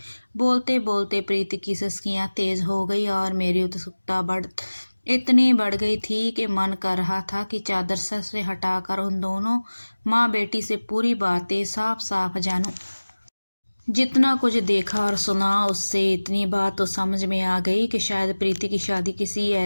बोलते बोलते प्रीति की सिसकियाँ तेज हो गई और मेरी उत्सुकता इतनी बढ़ गई थी कि मन कर रहा था कि चादर सर से हटाकर उन दोनों माँ बेटी से पूरी बातें साफ साफ जानूं। जितना कुछ देखा और सुना उससे इतनी बात तो समझ में आ गई कि शायद प्रीति की शादी किसी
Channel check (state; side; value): inverted; both; correlation -1.00